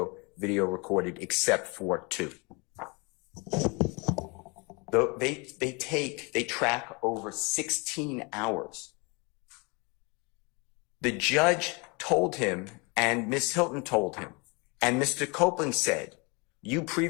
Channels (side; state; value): right; quieter; 29.6 dB